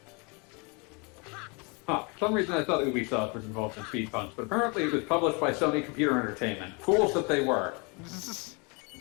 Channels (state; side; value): quieter; right; 31.2 dB